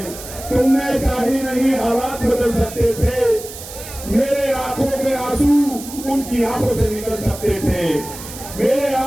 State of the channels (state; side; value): noise; right; hiss, 13 dB below the sound